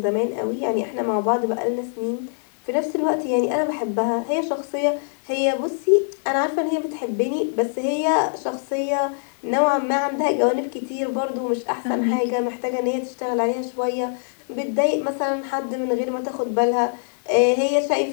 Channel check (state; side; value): silent; right; 63 dB below the other